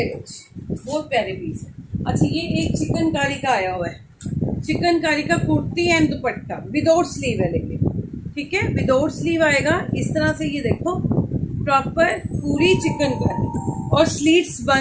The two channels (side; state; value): both; identical; correlation 1.00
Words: लो, बहुत प्यारे पीस है। अच्छा, ये एक चिकनकारी का आया हुआ है, चिकनकारी का kurti and dupatta without sleeve है लेकिन। ठीक है, विदाउट स्लीव आएगा इस तरह से। ये देखो प्रॉपर पूरी चिकनकारी, और स्लीव्स